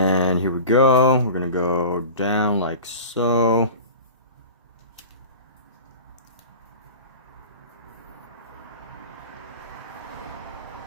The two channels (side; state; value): both; inverted; correlation -0.37